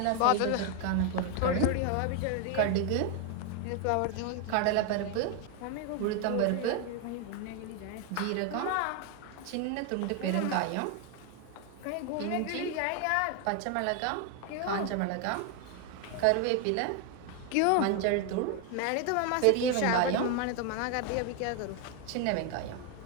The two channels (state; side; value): different; both; correlation 0.01